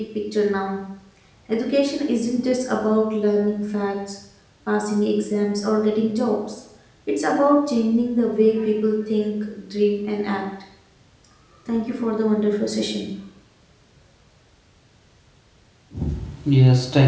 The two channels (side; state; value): both; identical; correlation 1.00